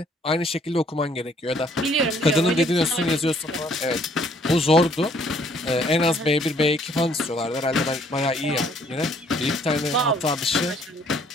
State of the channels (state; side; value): normal; both; correlation 0.63